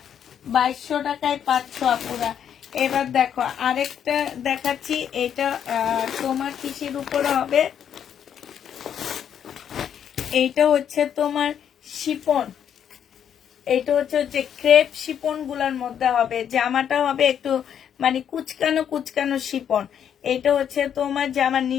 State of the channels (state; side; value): quieter; right; 8.8 dB